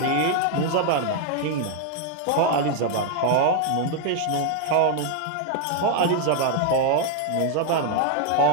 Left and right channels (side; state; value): both; different; correlation 0.00